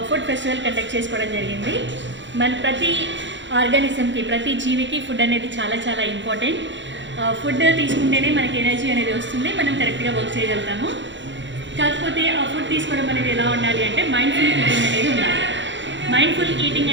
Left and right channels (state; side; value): late; left; 0.54 ms